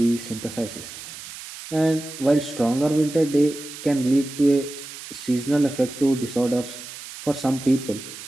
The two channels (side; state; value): right; noise; hiss, 13 dB below the sound